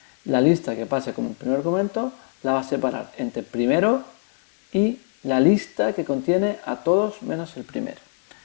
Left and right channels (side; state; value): right; silent; 63 dB below the other